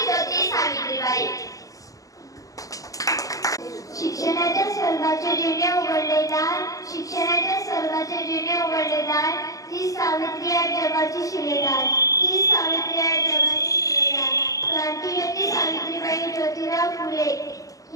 सावित्रीबाई. शिक्षणाच्या स्वर्गाचे जिने उघडले दार, शिक्षणाच्या स्वर्गाचे जिने उघडले दार, ती सावित्री आहे जगाची शिलेदार, ती सावित्री आहे जगाची शिलेदार. क्रांतिज्योती सावित्रीबाई ज्योतिराव फुले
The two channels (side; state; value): right; late; 0.17 ms